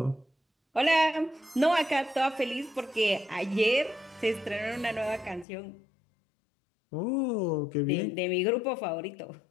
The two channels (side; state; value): right; drops out; at 5.5 s